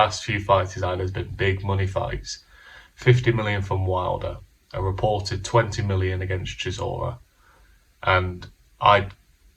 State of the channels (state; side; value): identical; both; correlation 1.00